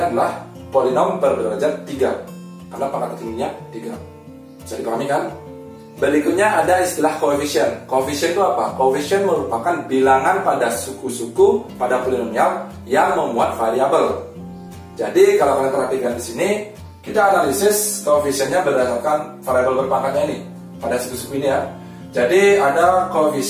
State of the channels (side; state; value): both; identical; correlation 1.00